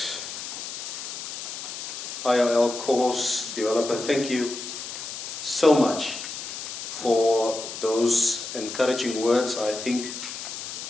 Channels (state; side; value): noise; left; hiss, 8 dB below the sound